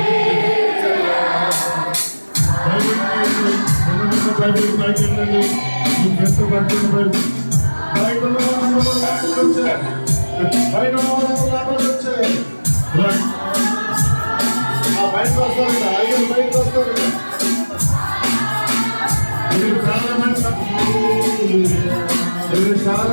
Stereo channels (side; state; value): both; inverted; correlation -1.00